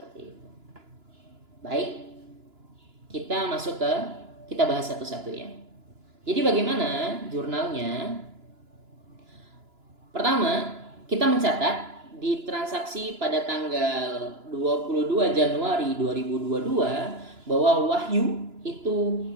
itu. Baik, kita bahas satu-satu ya. Jadi bagaimana jurnalnya? Pertama, kita mencatat di transaksi pada tanggal 22 Januari 2022 bahwa Wahyu itu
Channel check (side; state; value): left; late; 2.9 ms